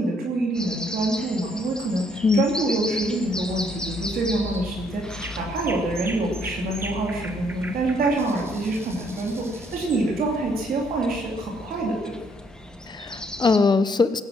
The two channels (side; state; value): both; normal; correlation 0.68